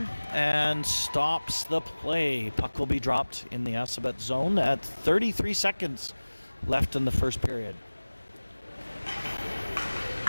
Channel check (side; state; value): both; inverted; correlation -1.00